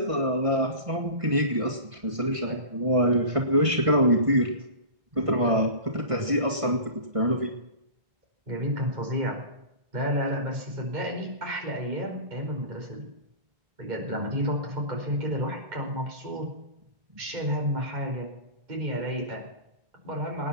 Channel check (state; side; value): late; left; 1.6 ms